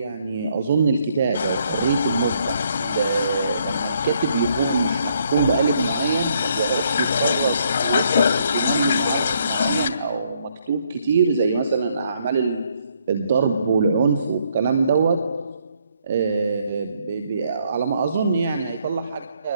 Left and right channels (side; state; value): both; inverted; correlation -0.70